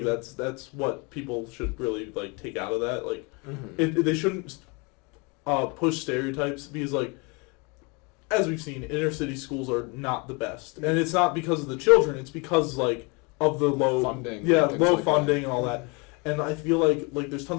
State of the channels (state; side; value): quieter; right; 30.1 dB